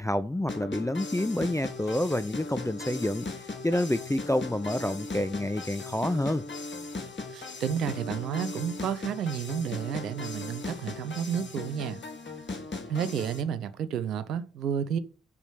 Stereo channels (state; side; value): normal; both; correlation 0.74